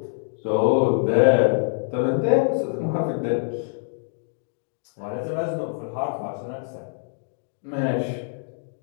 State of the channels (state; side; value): silent; right; digital silence